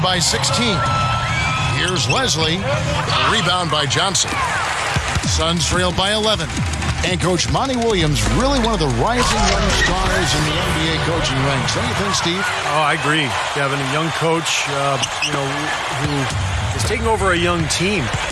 by 16. Here's Leslie. A rebound by Johnson. Suns trailed by 11. And Coach Monty Williams, really one of the rising young stars in the NBA coaching ranks. Don't you think, Steve? Oh, I agree. Kevin, a young coach, who is taking over a young team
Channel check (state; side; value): identical; both; correlation 1.00